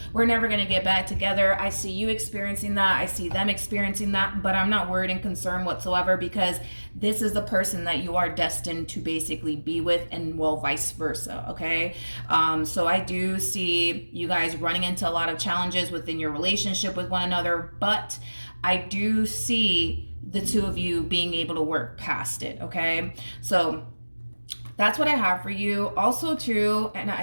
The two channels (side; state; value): both; inverted; correlation -1.00